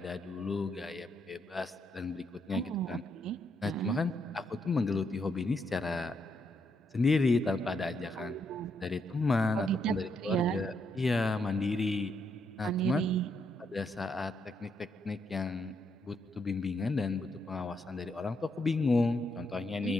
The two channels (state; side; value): normal; both; correlation 0.78